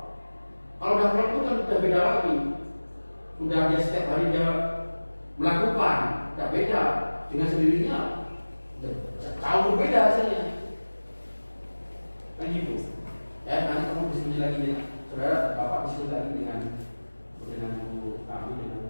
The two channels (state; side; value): inverted; both; correlation -1.00